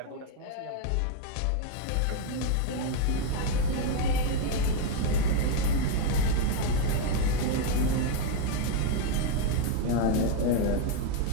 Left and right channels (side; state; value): both; different; correlation 0.01